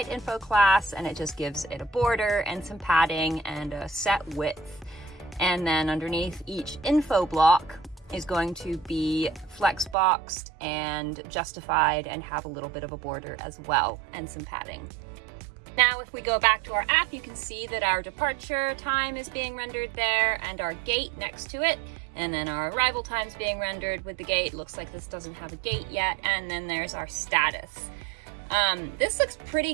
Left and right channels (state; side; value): drops out; left; at 10.0 s